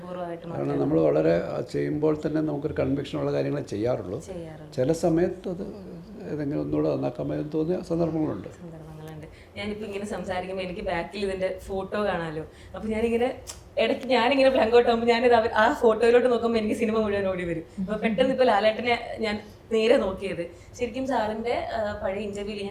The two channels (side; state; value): both; identical; correlation 1.00